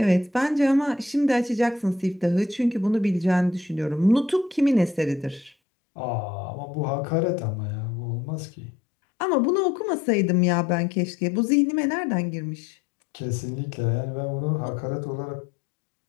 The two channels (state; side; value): drops out; right; at 5.6 s